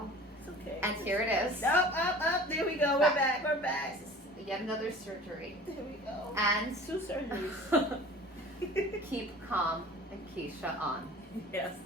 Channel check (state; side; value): normal; both; correlation 0.43